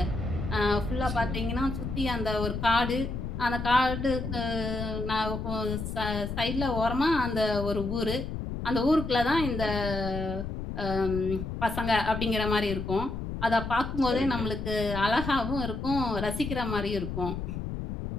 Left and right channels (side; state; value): left; noise; rumble, 5 dB below the sound